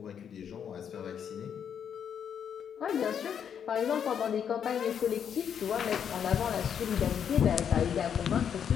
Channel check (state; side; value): quieter; right; 8.2 dB